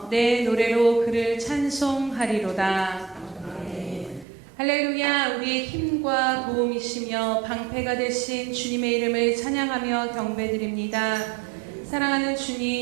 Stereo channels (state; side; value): drops out; left; at 4.2 s